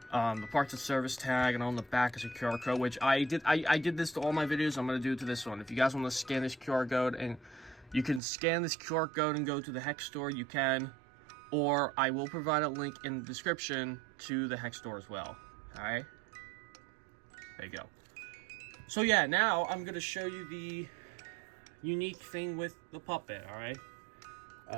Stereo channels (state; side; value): drops out; left; at 8.2 s